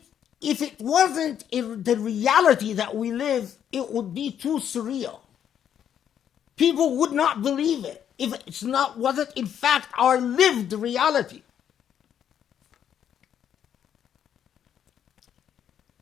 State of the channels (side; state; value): right; quieter; 9.3 dB